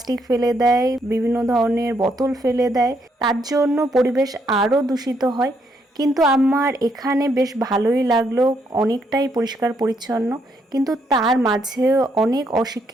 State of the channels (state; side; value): normal; both; correlation 0.74